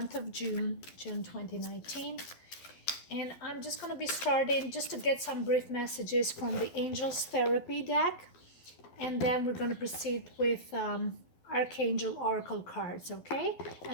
of June 2019. And I'm just going to be starting just to get some brief messages from the Angels Therapy deck, and then we're going to proceed with Archangel Oracle cards, okay?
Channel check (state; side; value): late; right; 12 ms